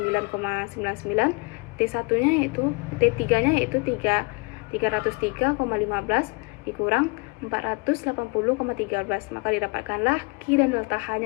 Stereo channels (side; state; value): right; quieter; 30.0 dB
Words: T1-nya yaitu T3-nya yaitu 303,15 dikurang 480,13, maka didapatkanlah Q dan delta